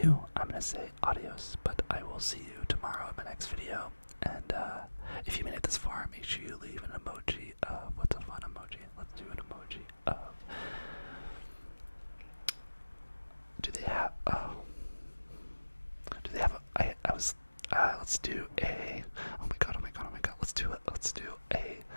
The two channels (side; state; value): both; inverted; correlation -1.00